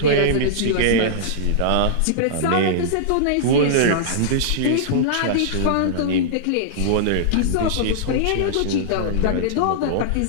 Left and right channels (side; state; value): both; different; correlation -0.02